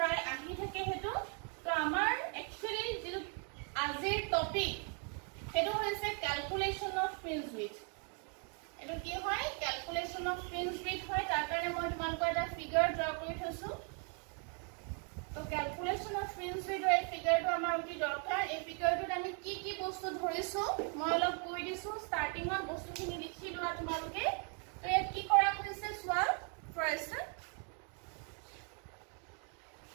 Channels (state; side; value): quieter; left; 39.6 dB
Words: আহি থাকে হেতু তো আমাৰ একচুয়ালি যেটো আজিৰ টপিক হেতু হৈছে ক্যালকুলেশন অফ ফ্ৰিঞ্জ উইক এটো কি হয় ক্যালকুলেশন অফ ফ্ৰিঞ্জ উইক হয় তাৰ কাৰণে মই তোমালোকৰ এটা ফিগাৰ ড্ৰ কৰি থৈছো তো ক্যালকুলেশন অফ ফ্ৰিঞ্জ উইকৰ এই ফিগাৰটো আমাৰ অতি দৰকাৰ এই ফিগাৰটোত আমি কি বস্তু ধৰিছো মই অলপ কৈ দিছো ষ্টাৰ্টিংত বস্তুখিনি লিখি লোৱা তোমালোকে তো ইয়াত কি কৰা হৈছে চোৱা ফাৰ্ষ্ট